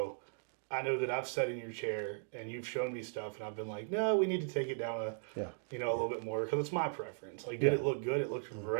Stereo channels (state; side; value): silent; left; digital silence